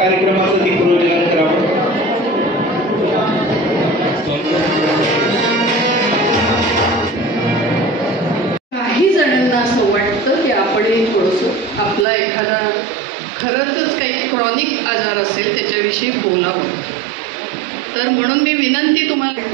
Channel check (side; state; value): left; drops out; at 12.1 s